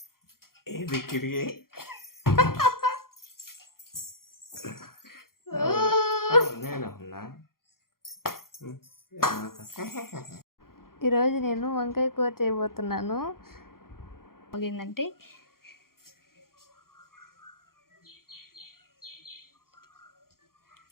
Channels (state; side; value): late; right; 0.92 ms